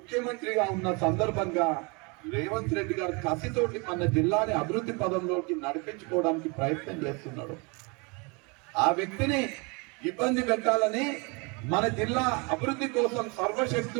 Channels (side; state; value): left; quieter; 30.2 dB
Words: ఉన్న సందర్భంగా రేవంత్ రెడ్డి గారు కసితోటి మన జిల్లాని అభివృద్ధి పదంలోకి నడిపించుకోవడానికి ప్రయత్నం చేస్తున్నాడు. ఆ వ్యక్తిని ఇబ్బంది పెట్టాలని మన జిల్లా అభివృద్ధి కోసం